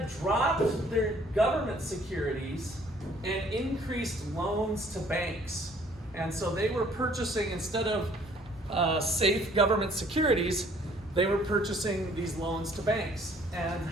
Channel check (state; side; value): normal; both; correlation 0.59